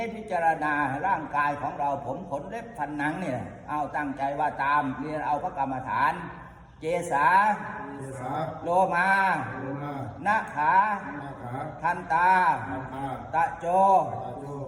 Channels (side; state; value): both; identical; correlation 1.00